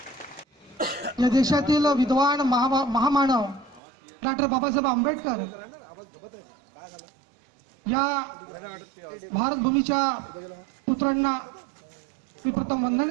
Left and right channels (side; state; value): left; drops out; at 3.8 s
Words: या देशातील विद्वान महामानव डॉक्टर बाबासाहेब आंबेडकर या भारतभूमीच्या पुत्रांना मी प्रथम